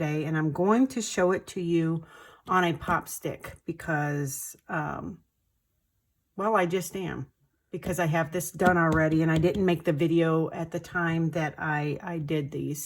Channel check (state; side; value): identical; both; correlation 1.00